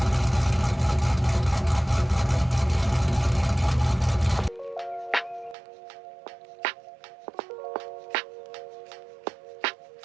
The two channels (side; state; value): left; drops out; at 5.6 s